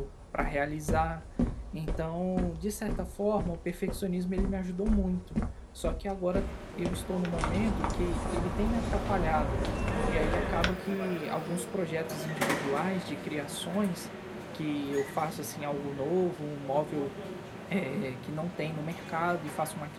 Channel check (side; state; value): both; identical; correlation 1.00